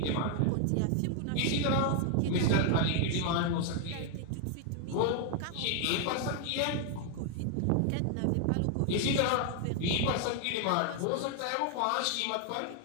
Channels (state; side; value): different; both; correlation 0.00